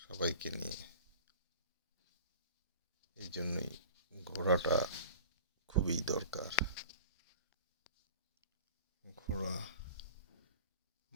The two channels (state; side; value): inverted; both; correlation -0.41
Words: সবাইকে নিয়ে। এই জন্যই ঘোরাটা খুবই দরকার। ঘোরা